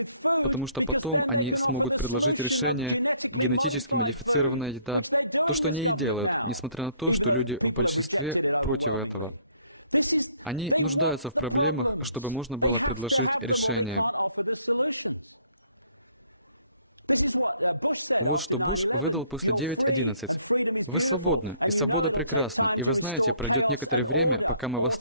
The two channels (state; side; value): inverted; both; correlation -0.62